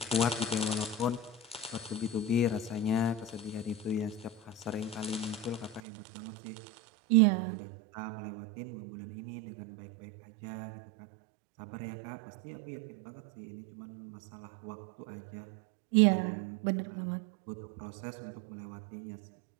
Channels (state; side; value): drops out; left; at 5.8 s